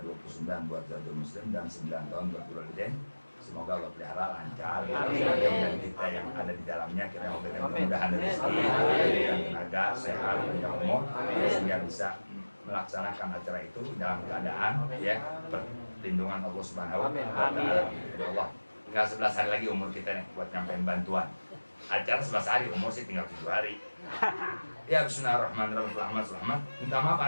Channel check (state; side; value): inverted; both; correlation -1.00